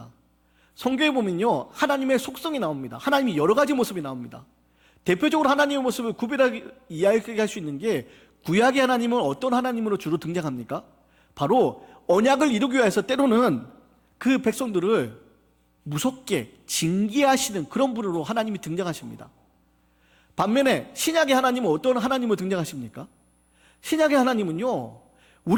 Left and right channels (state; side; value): identical; both; correlation 1.00